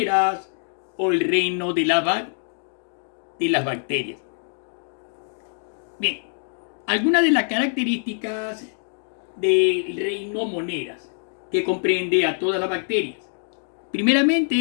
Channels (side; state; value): right; silent; digital silence